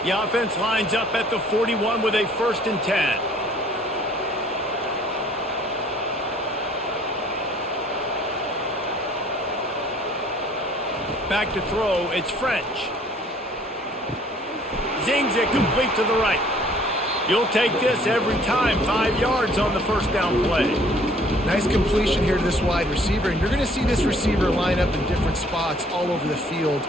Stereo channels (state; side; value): normal; both; correlation 0.57